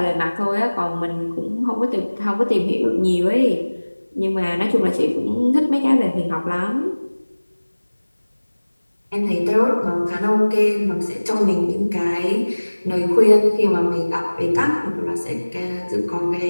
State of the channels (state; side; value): inverted; both; correlation -1.00